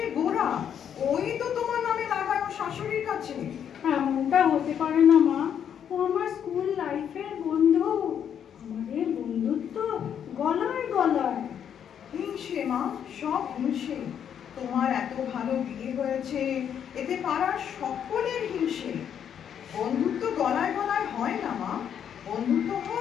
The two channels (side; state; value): right; quieter; 8.7 dB